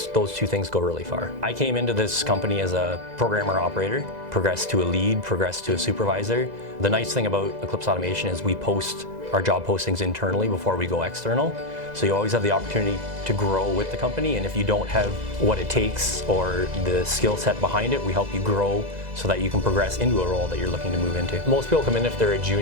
two things go really far. I came into this company as a programmer operator, progressed to a lead, progressed to a supervisor. The nice thing about Eclipse Automation is we post our job postings internally before we go external. So you always have the opportunity to grow with the company, and if you don't have what it takes or the skill set behind it, we help you grow so that you can progress into a role that you're looking to move into. Most people come in, if they're a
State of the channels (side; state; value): left; late; 2.0 ms